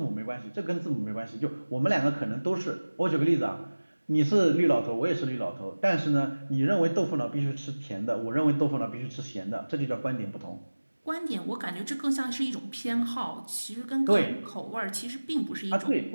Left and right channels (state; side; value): inverted; both; correlation -1.00